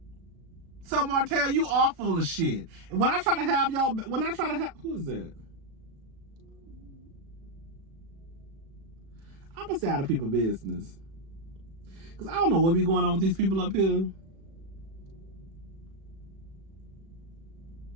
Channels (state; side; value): late; left; 36 ms